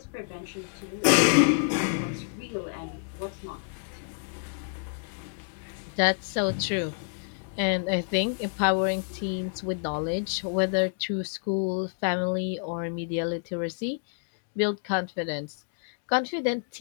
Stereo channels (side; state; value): right; silent; digital silence